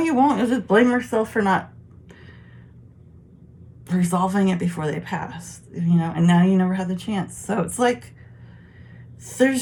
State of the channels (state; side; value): identical; both; correlation 1.00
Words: won't. You'll just blame yourself for not resolving it before they passed, you know, and now you never had the chance. So it's like,